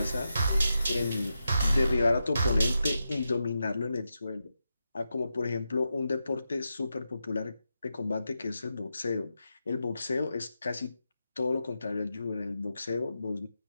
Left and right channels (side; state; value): both; inverted; correlation -0.87